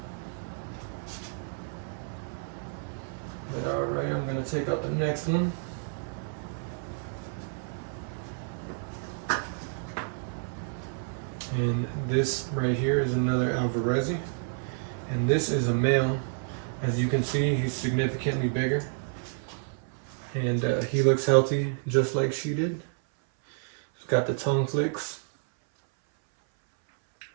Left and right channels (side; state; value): left; silent; 58 dB below the other